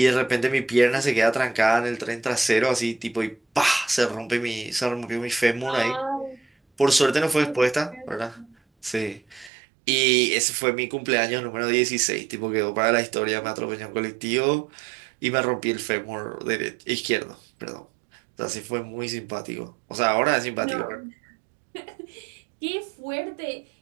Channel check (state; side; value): drops out; left; at 9.5 s